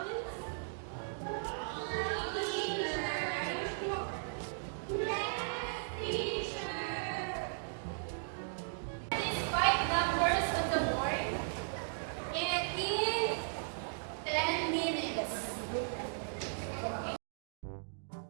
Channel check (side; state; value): left; silent; digital silence